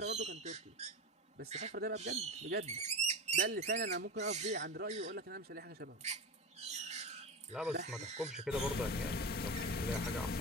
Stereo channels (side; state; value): both; normal; correlation 0.22